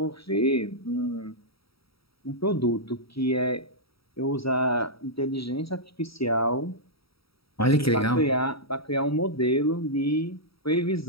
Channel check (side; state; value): right; late; 0.75 ms